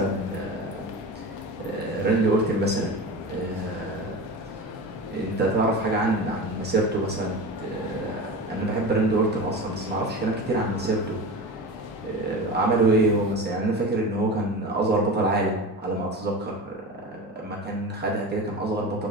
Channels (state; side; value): normal; both; correlation 0.29